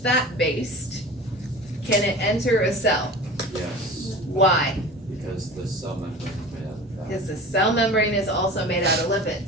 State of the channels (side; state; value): both; normal; correlation 0.36